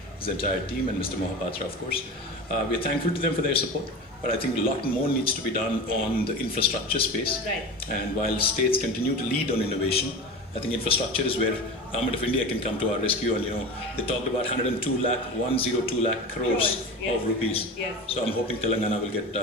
his entire team, and Mr. Mohapatra, of course. We're thankful to them for their support. but I think a lot more needs to be done on the infrastructure space. Right. And while states continue to lead on innovation, I think infrastructure is where Government of India can come to our rescue. And they talked about 102 lakh crores Yes. of rupees. Yes. So I'm hoping Telangana will get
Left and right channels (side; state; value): both; normal; correlation 0.30